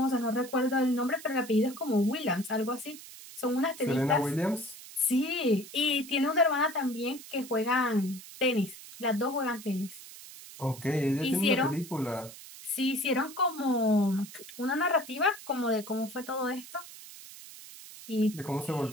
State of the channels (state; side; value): noise; right; hiss, 16 dB below the sound